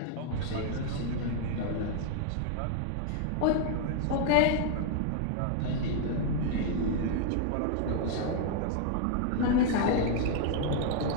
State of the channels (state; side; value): different; both; correlation 0.00